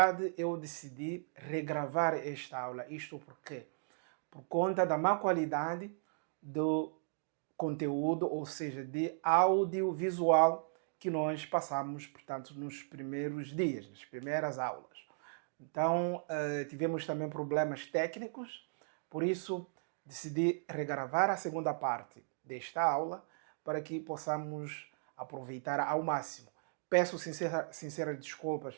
eu decidi regravar esta aula, isto porque por conta da má qualidade do conteúdo, ou seja, de audiovisual que nós passamos, portanto, nos primeiros dias, nas primeiras aulas. Então, tivemos também problemas técnicos, por isso decidi regravar a segunda parte desta aula para que possamos aproveitar ao máximo. Peço sinceras desculpas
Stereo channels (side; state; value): left; silent; digital silence